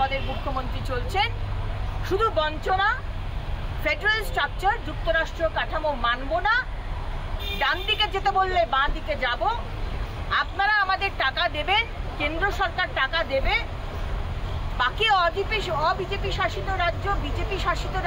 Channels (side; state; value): both; identical; correlation 1.00